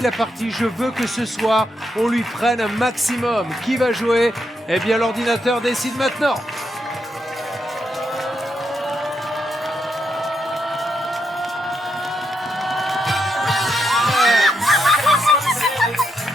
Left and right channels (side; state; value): both; normal; correlation 0.81